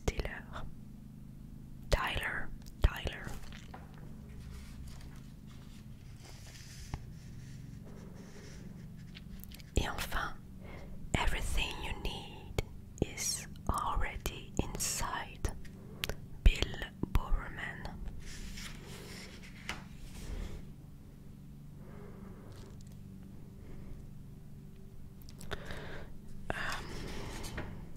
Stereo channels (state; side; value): identical; both; correlation 1.00